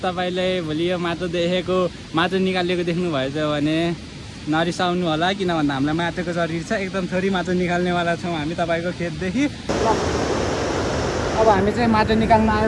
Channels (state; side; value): identical; both; correlation 1.00